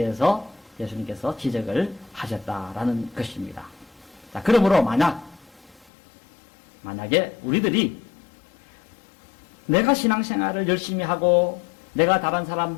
예수님께서 지적을 하셨다라는 것입니다. 자, 그러므로 만약에 우리들이 내가 신앙생활을 열심히 하고 내가 다른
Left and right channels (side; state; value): right; drops out; at 5.9 s